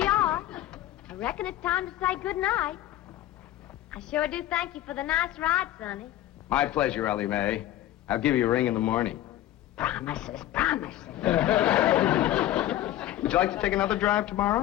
are. I reckon it's time to say good night. I sure do thank you for the nice ride, Sonny. My pleasure, Elly May. I'll give you a ring in the morning. Promises, promises. Would you like to take another drive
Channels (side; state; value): right; quieter; 13.7 dB